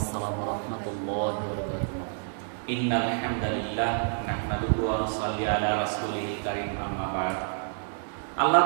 ওয়া রাহমাতুল্লাহি ওয়া বারাকাতুহু। ইন্নাল হামদালিল্লাহ নাহমাদুহু ওয়া নুসাল্লি আলা রাসূলিল কারীম, আম্মা বা'দ। আল্লাহ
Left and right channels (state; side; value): silent; left; 59 dB below the other